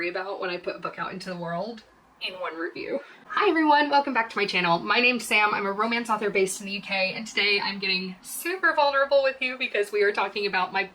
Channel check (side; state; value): both; identical; correlation 1.00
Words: about when I put a book out into the world in one review. Hi everyone, welcome back to my channel. My name's Sam, I'm a romance author based in the UK, and today I'm getting super vulnerable with you because we are talking about my